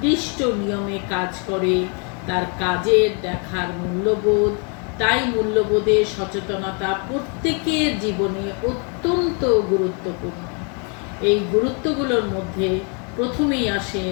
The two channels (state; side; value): quieter; right; 36.7 dB